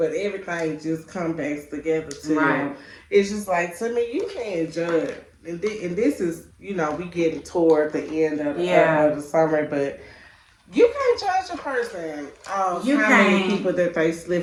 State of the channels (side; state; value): both; identical; correlation 1.00